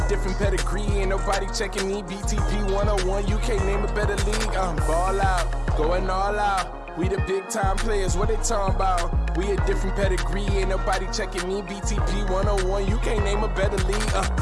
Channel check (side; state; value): both; identical; correlation 1.00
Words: different pedigree, ain't nobody checking me. BTP 101, you can't name a better league. Ball out, going all out. We the big time players, what they talking about? We a different pedigree, ain't nobody checking me. BTP 101, you can't name a better league.